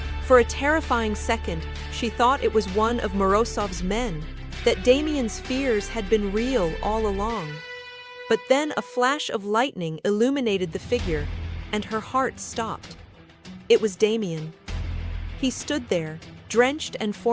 For a terrifying second, she thought it was one of Morozov's men, that Damien's fears had been real all along. But then a flash of lightning illuminated the figure, and her heart stopped. It was Damien. He stood there, drenched and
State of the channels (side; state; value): both; identical; correlation 1.00